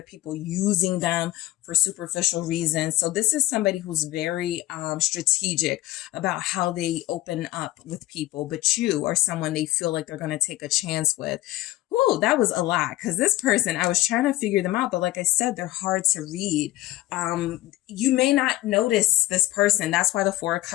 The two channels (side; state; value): right; quieter; 16.5 dB